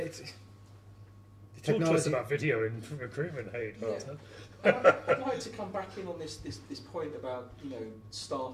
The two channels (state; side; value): identical; both; correlation 1.00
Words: Talk to us about video in recruitment, hey. I'd like to come back in on this point about